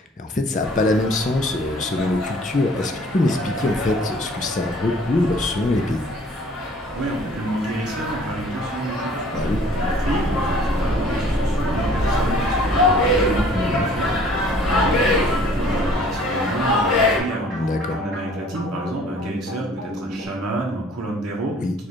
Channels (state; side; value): normal; both; correlation 0.54